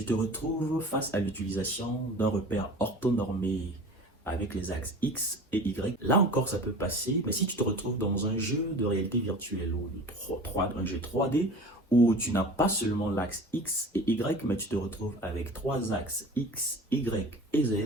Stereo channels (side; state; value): both; normal; correlation 0.39